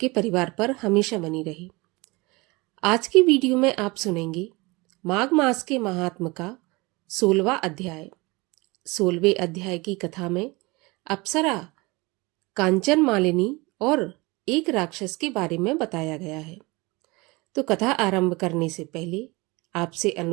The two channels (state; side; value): quieter; left; 24.4 dB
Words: परिवार पर हमेशा बनी रहे। आज की वीडियो में आप सुनेंगे माघ मास के महात्म का 16वां अध्याय। 16वें अध्याय की कथा में अप्सरा, कांचन मालिनी और एक राक्षस के बारे में बताया गया है। तो कथा आरंभ करने से पहले आपसे